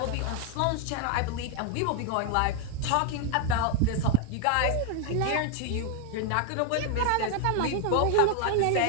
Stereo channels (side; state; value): both; different; correlation 0.00